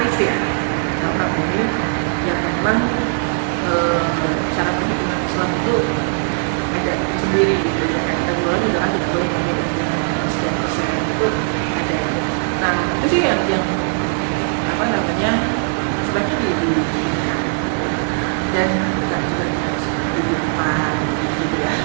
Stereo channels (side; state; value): left; silent; 58 dB below the other